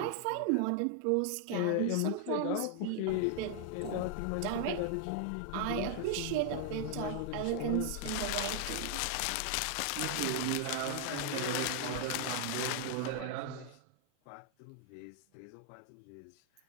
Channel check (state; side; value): different; both; correlation 0.00